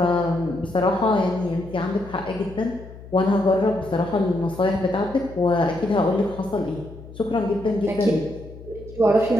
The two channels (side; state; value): left; noise; hum, 16 dB below the sound